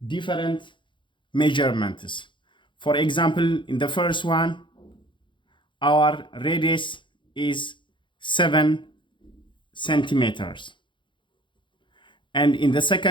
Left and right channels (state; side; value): late; right; 0.23 ms